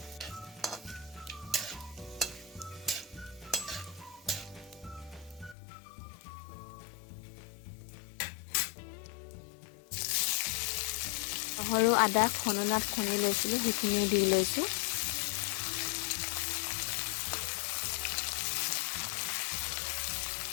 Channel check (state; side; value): drops out; right; at 5.6 s